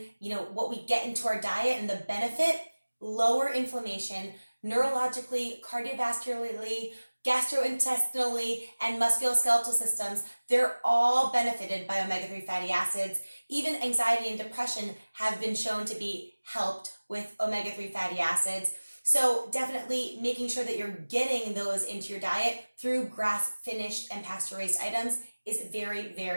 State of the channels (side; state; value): both; inverted; correlation -1.00